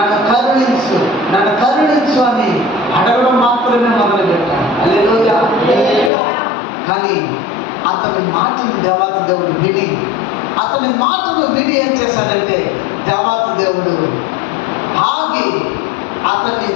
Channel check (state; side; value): drops out; right; at 6.1 s